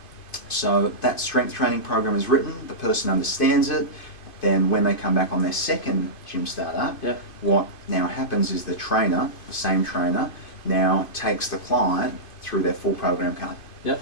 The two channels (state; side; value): late; right; 2.5 ms